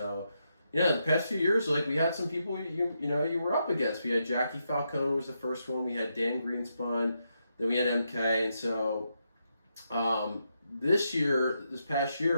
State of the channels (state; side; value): inverted; both; correlation -0.82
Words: yeah, the past few years, like we had some people you were up against. We had Jackie Falcone was the first one. We had Dan Greenspun. Then we had MK. And so this past